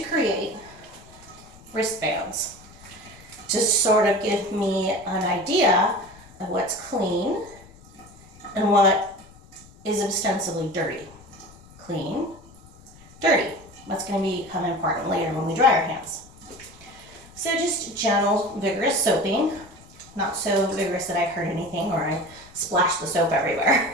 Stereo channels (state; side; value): noise; left; rumble, 23 dB below the sound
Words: create wristbands to sort of give me an idea of what's clean and what is ostensibly dirty. Clean, dirty. That's going to become important later when we dry our hands. So just gentle, vigorous soaping. Not so vigorous that I hurt anything or I splash the soap